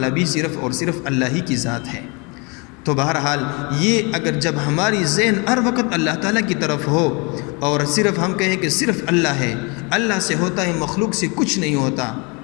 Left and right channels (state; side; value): quieter; right; 30.4 dB